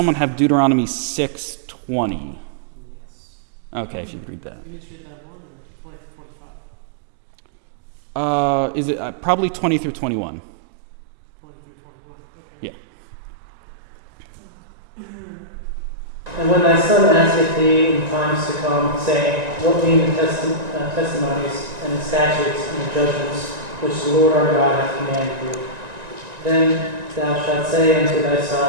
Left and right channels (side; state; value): left; late; 1.9 ms